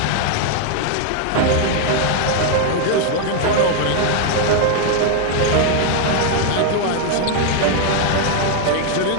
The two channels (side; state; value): both; different; correlation 0.00